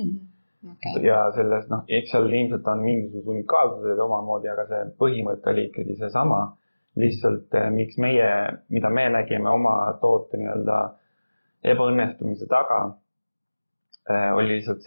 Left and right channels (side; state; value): both; inverted; correlation -1.00